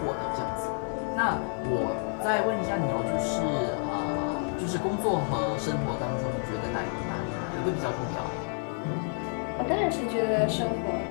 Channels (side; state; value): right; silent; 58 dB below the other